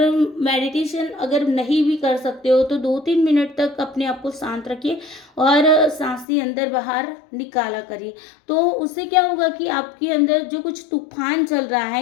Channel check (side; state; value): right; drops out; at 6.2 s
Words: मेडिटेशन अगर नहीं भी कर सकते हो तो 2-3 मिनट तक अपने आप को शांत रखिए और सांसें अंदर बाहर निकाला करिए। तो उससे क्या होगा कि आपके अंदर जो कुछ तूफान चल रहा